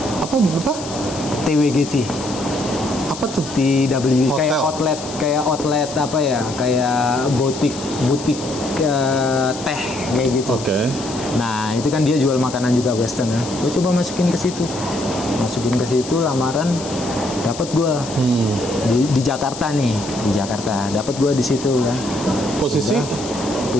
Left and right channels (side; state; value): left; noise; hiss, 12 dB below the sound